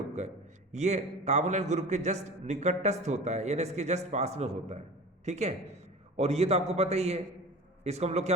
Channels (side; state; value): both; normal; correlation 0.37